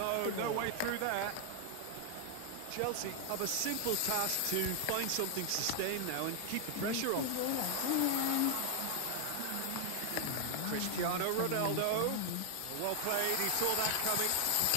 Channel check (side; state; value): both; different; correlation 0.00